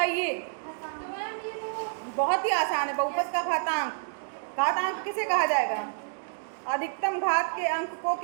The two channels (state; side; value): silent; left; digital silence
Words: तो मैम ये तो बहुत ही आसान है, बहुपद का घातांक। घातांक किसे कहा जाएगा? अधिकतम घात के अंक को